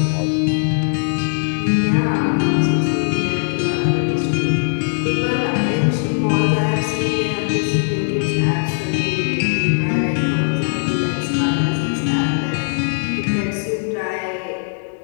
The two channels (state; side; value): silent; right; 66 dB below the other